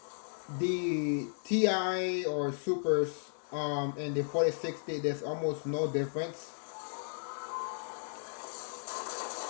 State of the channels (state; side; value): silent; right; digital silence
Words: the Ti or Supers and the 4060, there's almost no difference.